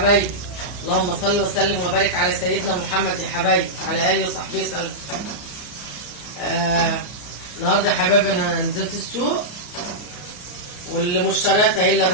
اللهم صل وسلم وبارك على سيدنا محمد يا حبايبي، على اله وصحبه وسلم. النهارده يا حبايبي انا نزلت السوق والمشتريات اهي اللي انا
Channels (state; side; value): late; right; 34 ms